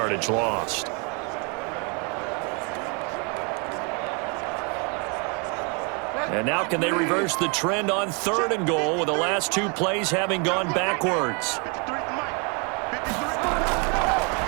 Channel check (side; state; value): left; quieter; 34.0 dB